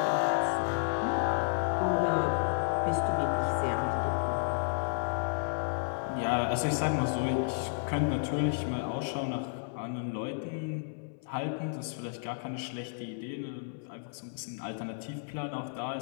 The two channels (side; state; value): right; silent; 56 dB below the other